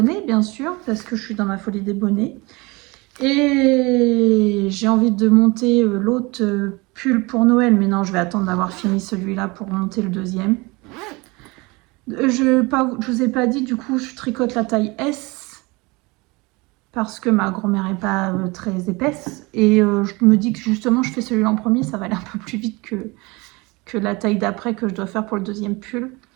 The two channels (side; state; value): left; quieter; 25.0 dB